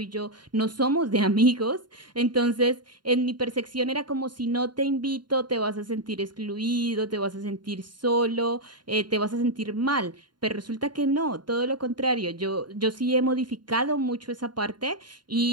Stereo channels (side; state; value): left; late; 0.71 ms